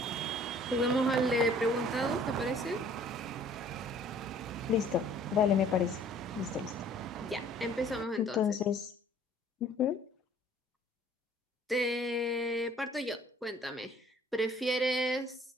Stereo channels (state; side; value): normal; both; correlation 0.55